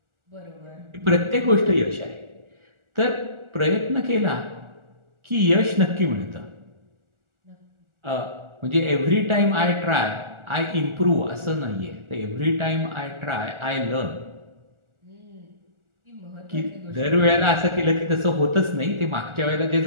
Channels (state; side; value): late; left; 1.4 ms